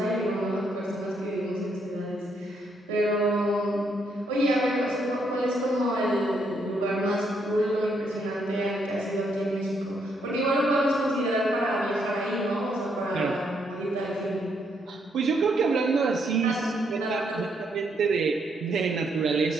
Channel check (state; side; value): normal; both; correlation 0.74